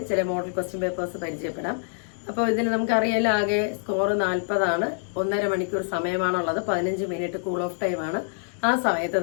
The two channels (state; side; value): silent; right; digital silence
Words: ചില മോഡൽ ക്വസ്റ്റ്യൻ പേപ്പേഴ്സ് പരിചയപ്പെടാം. അപ്പോൾ ഇതിൽ നമുക്കറിയാലോ, ആകെ സ്കോർ 40 1.5 മണിക്കൂർ സമയമാണുള്ളത്. 15 മിനിറ്റ് കൂൾ ഓഫ് ടൈമാണ്. ആ സമയത്ത്